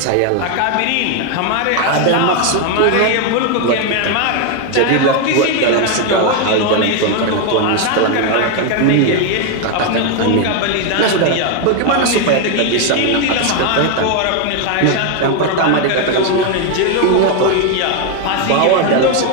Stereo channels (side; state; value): both; different; correlation 0.01